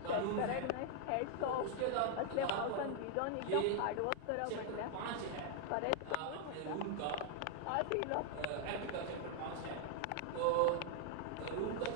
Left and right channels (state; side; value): different; both; correlation 0.00